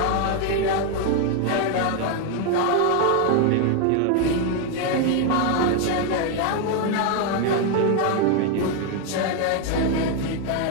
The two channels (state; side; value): different; both; correlation 0.01